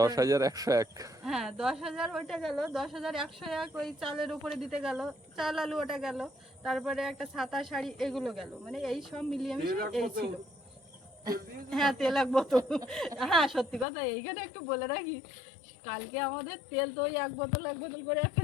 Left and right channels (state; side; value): drops out; right; at 13.9 s